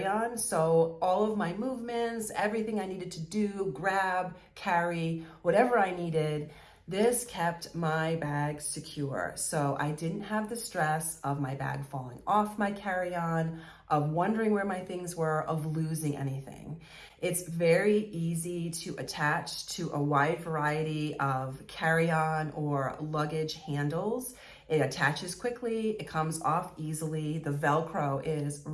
So all of my movements, everything I needed to do, grab, carry, whatever I needed, this kept my bag secure. So I didn't have the stress of my bag falling off my carry-on, of wondering where my things were, of losing anything. It's very easy to attach to a wide variety of carry-on or luggage handles. It attaches quickly, it comes off easily, the Velcro is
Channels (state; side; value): identical; both; correlation 1.00